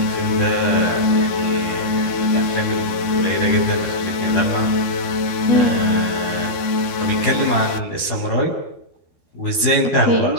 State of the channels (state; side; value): late; right; 12 ms